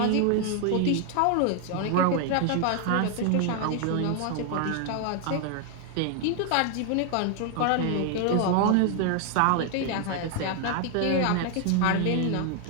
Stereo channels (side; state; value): both; different; correlation 0.00